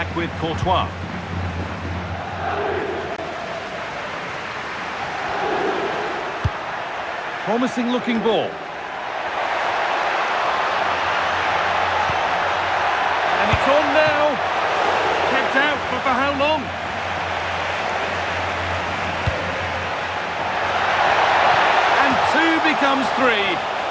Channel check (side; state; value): both; identical; correlation 1.00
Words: with Courtois. Promising looking ball. And it's on now. Kept out, but for how long? And 2 becomes 3